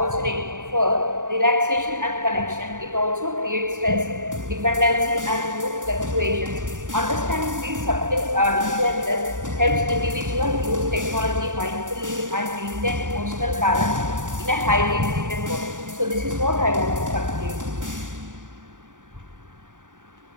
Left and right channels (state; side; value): late; left; 0.88 ms